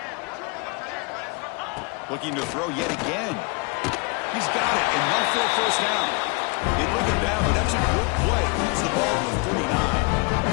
Looking to throw yet again. He's got it, enough for a 1st down. They bring him down, but that's a good play. Moves the ball to the 39.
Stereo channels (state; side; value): quieter; right; 30.2 dB